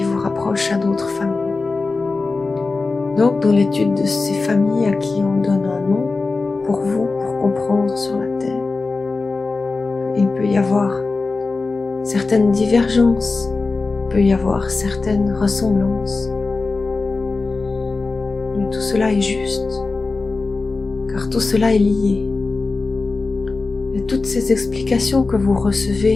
vous rapprochent à d'autres familles. Donc, dans l'étude de ces familles à qui on donne un nom, pour vous, pour comprendre sur la Terre, il peut y avoir certaines divergences, il peut y avoir certaines ressemblances. Mais tout cela est juste, car tout cela est lié. Et toutes ces explications que vous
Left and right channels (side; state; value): right; quieter; 3.8 dB